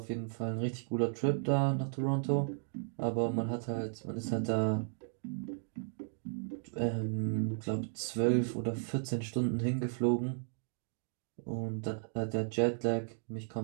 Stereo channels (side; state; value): left; silent; digital silence